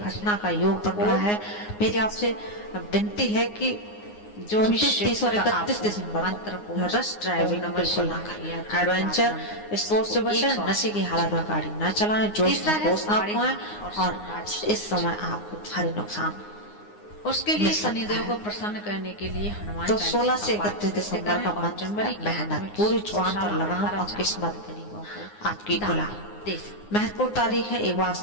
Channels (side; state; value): right; late; 9.6 ms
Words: का योग बन रहा है। मेरी आपसे विनती है कि जो 30 और 31 दिसंबर रश ड्राइविंग बिल्कुल ना करें। एडवेंचर स्पोर्ट्स से बचें, नशे की हालत में गाड़ी न चलाएं, जोश में होश ना खोएं और इस समय आपको भारी नुकसान। उसके लिए शनिदेव को प्रसन्न करने के लिए हनुमान तो 16 से 31 दिसंबर का मंथ मेहनत, पूरी जुबान पर लगाम और किस्मत आपकी गुलाम। महत्वपूर्ण तारीख है एक बार